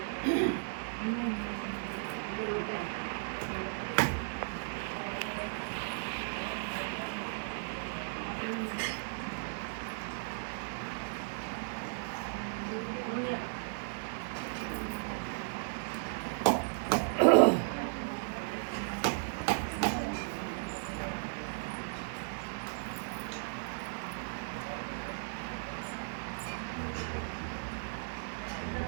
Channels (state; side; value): silent; left; 54 dB below the other